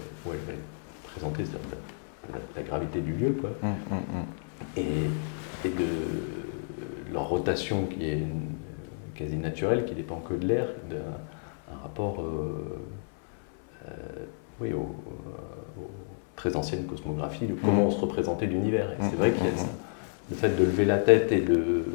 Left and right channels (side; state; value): right; silent; 58 dB below the other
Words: où elle va être présentée, c'est-à-dire la gravité du lieu, quoi. Et de leur rotation qui est quasi naturelle, qui dépend que de l'air, d'un rapport aux très anciennes cosmographies de comment on se représentait l'univers. Et c'est vrai qu'il y a ça. Le fait de lever la tête et de